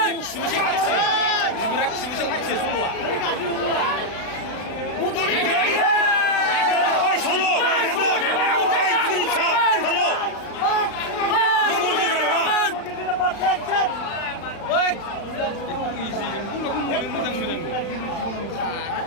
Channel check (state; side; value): late; right; 36 ms